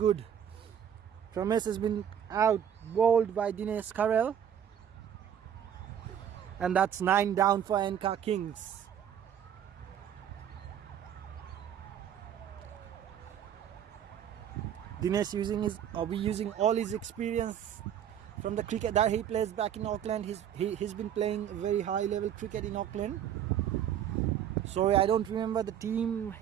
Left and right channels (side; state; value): left; quieter; 9.4 dB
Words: Promise has been out bowled by Dinesh Karel, and that's 9 down for ANCA Kings. Dinesh using all his experience from the cricket that he plays back in Auckland. He's been playing very high level cricket in Auckland. Sorry, I don't remember the team